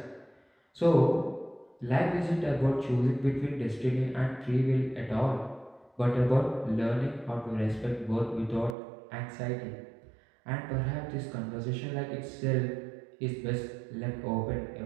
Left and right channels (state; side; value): drops out; left; at 8.8 s